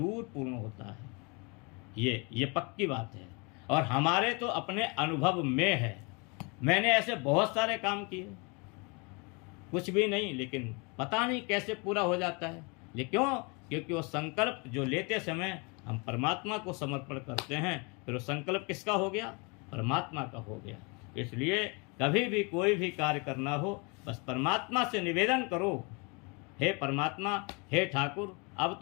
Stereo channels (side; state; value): right; quieter; 30.8 dB